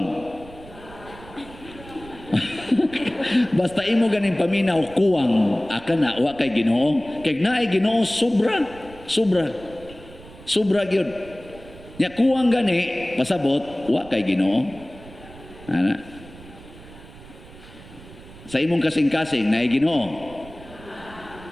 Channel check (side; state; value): right; noise; rumble, 19 dB below the sound